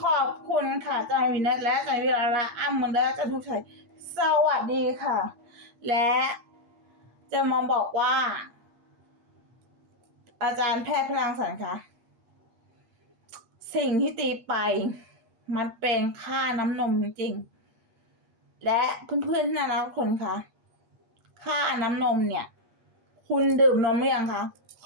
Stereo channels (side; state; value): left; late; 8.4 ms